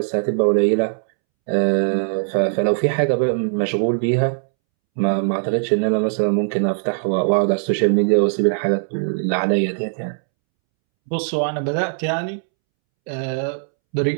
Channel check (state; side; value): silent; left; 66 dB below the other